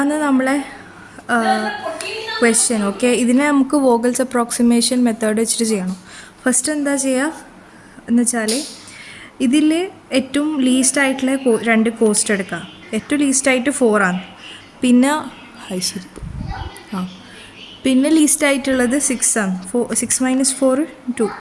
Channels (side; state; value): both; identical; correlation 1.00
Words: നമ്മളെ ക്വസ്റ്റ്യൻ. ഓക്കെ, ഇതിനെ നമുക്ക് വോഗൽസ് അപ്രോക്സിമേഷൻ മെത്തേഡ് വെച്ചിട്ട് ചെയ്യണം. ഫസ്റ്റ് എന്താ ചെയ്യുക എന്ന് വെച്ചാൽ ഇതിൽ ഏറ്റവും ലീസ്റ്റ് ആയിട്ടുള്ള രണ്ട് കോസ്റ്റ് എടുക്കുക. ഏറ്റവും ലീസ്റ്റായിട്ട് 4 ആണ്. പിന്നെ ശരി പിന്നെ ലീസ്റ്റ് ആയിട്ടുള്ളത് 6 ആണ്. 6 - 4 2.